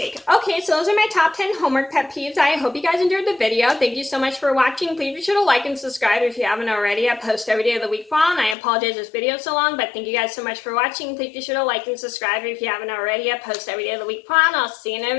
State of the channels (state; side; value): drops out; right; at 8.6 s